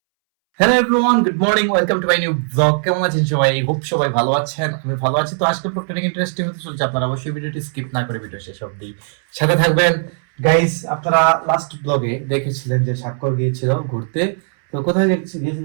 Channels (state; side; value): silent; left; 65 dB below the other